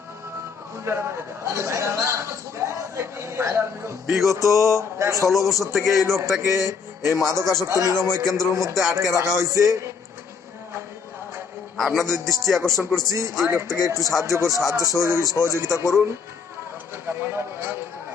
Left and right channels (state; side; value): quieter; right; 5.7 dB